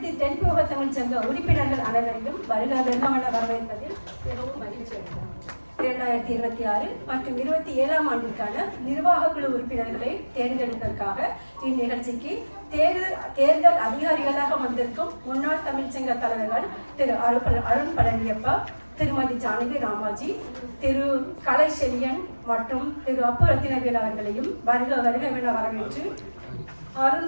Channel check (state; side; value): inverted; both; correlation -1.00